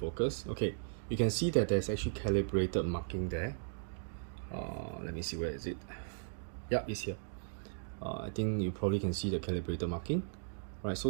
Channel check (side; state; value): left; silent; digital silence